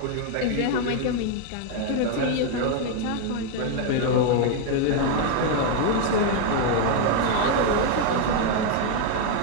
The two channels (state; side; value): different; both; correlation 0.01